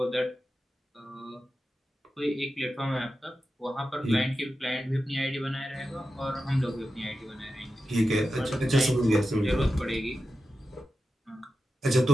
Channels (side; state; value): both; normal; correlation 0.91